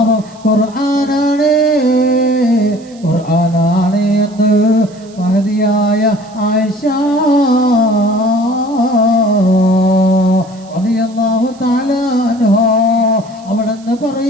ഖുർആനാണ് എന്ന് മഹദിയായ ആയിഷ റളിയല്ലാഹു തആല അൻഹാ അവിടെന്ന്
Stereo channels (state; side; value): noise; right; hiss, 26 dB below the sound